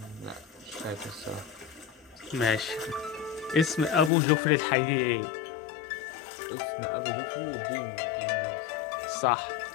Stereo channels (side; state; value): right; drops out; at 4.1 s